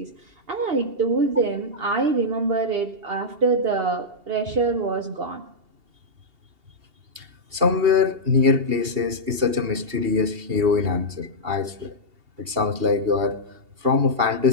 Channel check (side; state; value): left; late; 2.8 ms